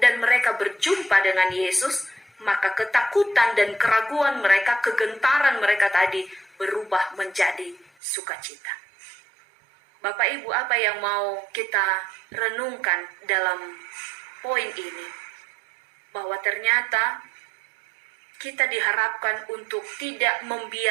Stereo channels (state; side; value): drops out; left; at 7.9 s